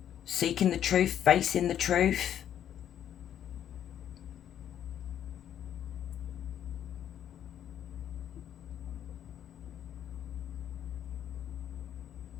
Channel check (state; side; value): quieter; right; 10.1 dB